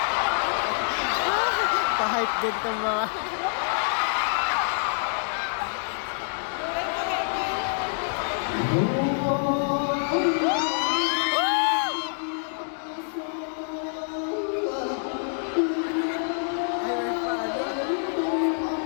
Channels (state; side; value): silent; right; digital silence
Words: Pa-hype din itong mga...